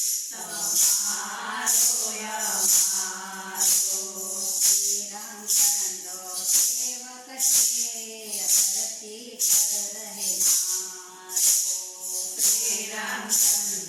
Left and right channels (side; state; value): both; identical; correlation 1.00